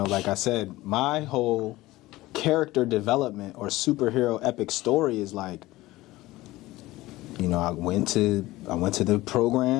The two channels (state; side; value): quieter; right; 18.2 dB